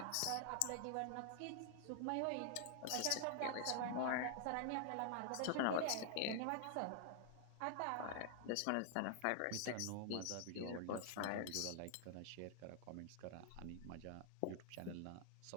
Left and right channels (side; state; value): both; different; correlation 0.00